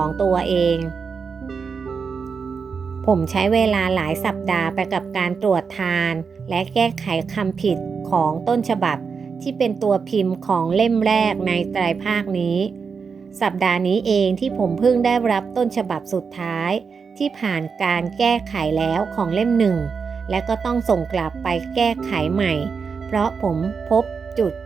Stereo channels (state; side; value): quieter; left; 5.6 dB